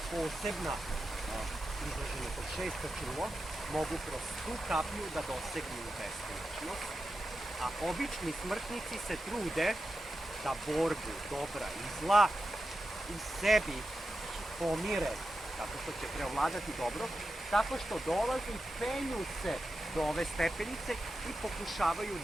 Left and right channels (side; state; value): both; normal; correlation 0.90